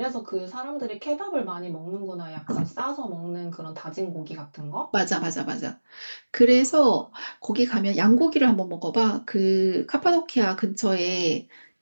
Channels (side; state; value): both; inverted; correlation -1.00